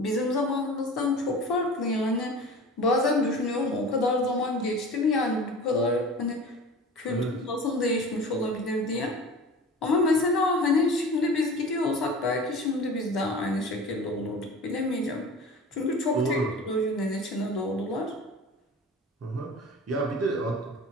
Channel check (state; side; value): normal; both; correlation 0.37